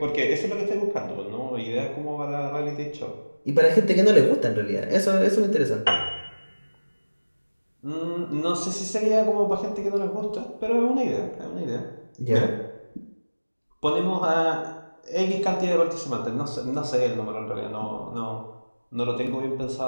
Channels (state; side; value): inverted; both; correlation -1.00